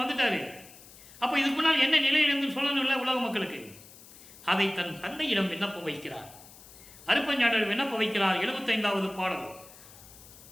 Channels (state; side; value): noise; left; hiss, 20 dB below the sound